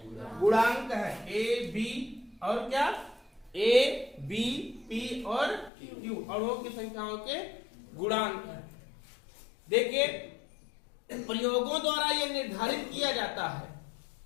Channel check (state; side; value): drops out; right; at 5.7 s